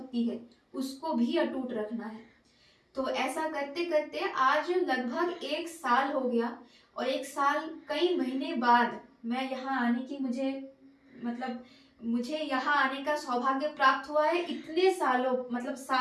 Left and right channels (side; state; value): both; identical; correlation 1.00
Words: है उसको भी अटूट रखना है। तो ऐसा करते करते आज लगभग 1 साल हो गया और 1 साल कई महीने बाद मैं यहाँ आने की मुझे यहाँ आने का सौभाग्य प्राप्त हुआ है। इतने सालों मतलब